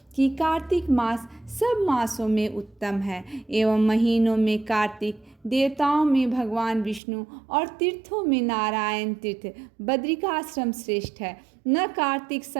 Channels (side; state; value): left; drops out; at 7.0 s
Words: कि कार्तिक मास सब मासों में उत्तम है एवं महीनों में कार्तिक, देवताओं में भगवान विष्णु और तीर्थों में नारायण तीर्थ बद्रिकाश्रम श्रेष्ठ है। न कार्तिक